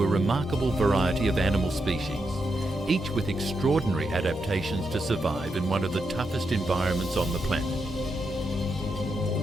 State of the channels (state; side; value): normal; both; correlation 0.84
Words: a remarkable variety of animal species, each with extraordinary adaptations to survive in one of the toughest environments on the planet.